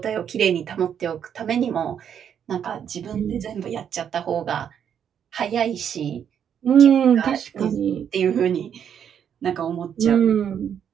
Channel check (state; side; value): quieter; left; 8.5 dB